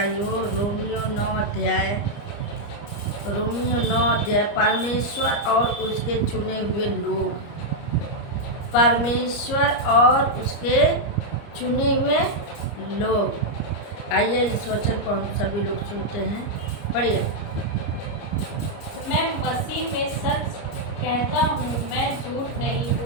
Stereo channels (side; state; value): right; late; 29 ms